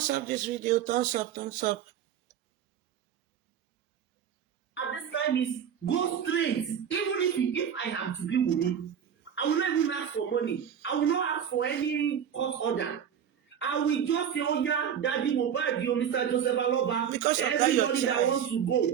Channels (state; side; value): quieter; left; 8.6 dB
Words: up this video. Thumbs up, thumbs up. At this time is go straight. Even if I am to be Wunmi, I will not even ask for money. I will not ask for any court order. I will just say, oh yeah, Daddy Mohbad, Mr. Joseph Aloba, everybody that wants to